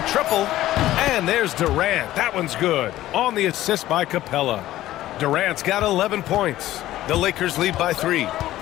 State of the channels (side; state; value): right; quieter; 14.7 dB